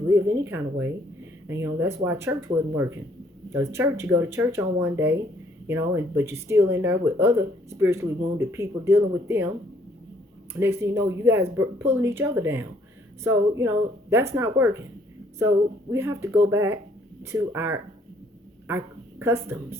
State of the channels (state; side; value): normal; both; correlation 0.65